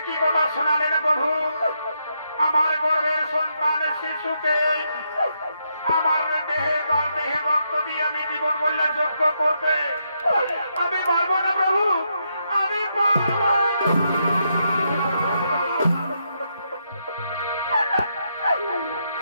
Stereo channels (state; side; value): inverted; both; correlation -0.79